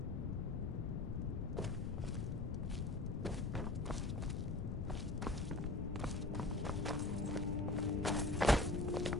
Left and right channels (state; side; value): noise; left; rumble, 1 dB below the sound